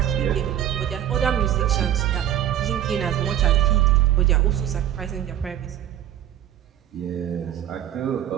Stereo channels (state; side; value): quieter; left; 11.2 dB